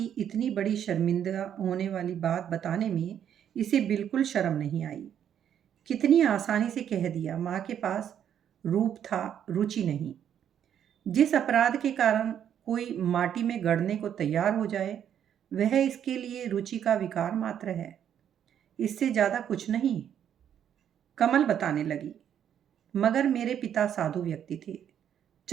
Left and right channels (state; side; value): quieter; left; 9.4 dB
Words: इतनी बड़ी शर्मिंदा होने वाली बात बताने में इसे बिल्कुल शर्म नहीं आई। कितनी आसानी से कह दिया, माँ के पास रूप था, रुचि नहीं। जिस अपराध के कारण कोई माटी में गड़ने को तैयार हो जाए, वह इसके लिए रुचि का विकार मात्र है, इससे ज्यादा कुछ नहीं। कमल बताने लगी, मगर मेरे पिता साधु व्यक्ति थे।